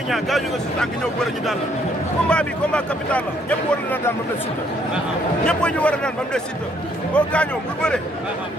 Niang gaañu nga si tànk ñëw bëre ñu daan la. combat bi combat capital la ñëpp war na daan ba mu des Siteu. ñëpp ñu war a daan ba mu des Siteu. boo gaañoo bul bëre.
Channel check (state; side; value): normal; both; correlation 0.67